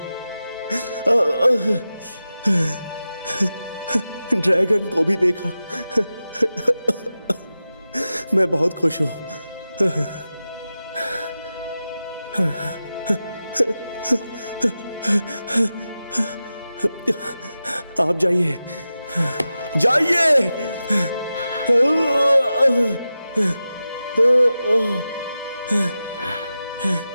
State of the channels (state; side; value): inverted; both; correlation -0.93